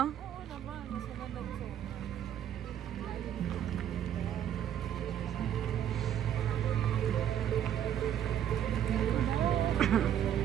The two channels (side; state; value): left; quieter; 10.2 dB